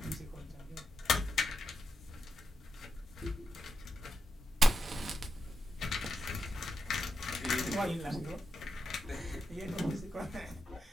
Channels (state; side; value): normal; both; correlation 0.86